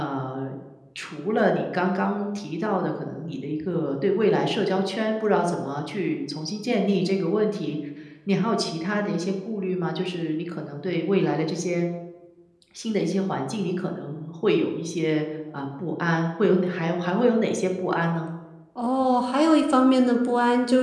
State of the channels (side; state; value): both; identical; correlation 1.00